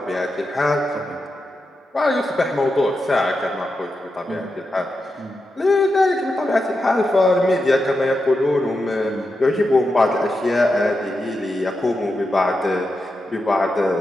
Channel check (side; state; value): both; normal; correlation 0.88